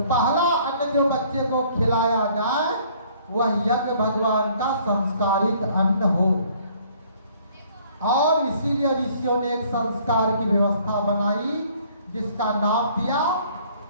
पहला अन्न जो बच्चे को खिलाया जाए वह यज्ञ भगवान का संस्कारित अन्न हो। और इसीलिए ऋषियों ने एक संस्कार की व्यवस्था बनाई जिसका नाम दिया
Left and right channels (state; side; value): inverted; both; correlation -0.59